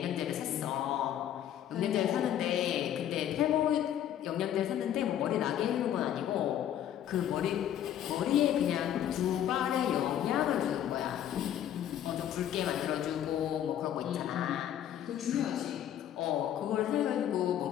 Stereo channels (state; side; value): quieter; right; 10.7 dB